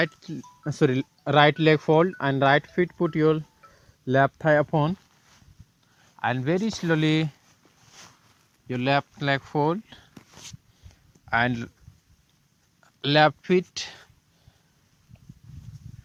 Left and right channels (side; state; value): both; identical; correlation 1.00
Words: leg fold and right foot put your left thigh upon, and very slowly your left leg fold and left foot,